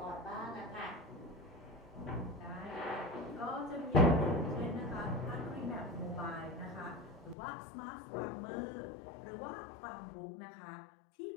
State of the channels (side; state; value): right; drops out; at 7.4 s